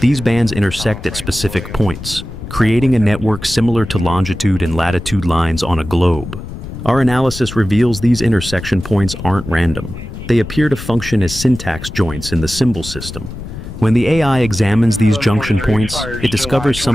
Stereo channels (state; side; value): noise; left; rumble, 10 dB below the sound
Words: bands intersect at specific points, creating a network similar to longitude and latitude lines on a globe. Our analysis reveals these intersection points aren't random. They appear to function as syntax joints in the symbol system. When the AI examines these junction points, it discovers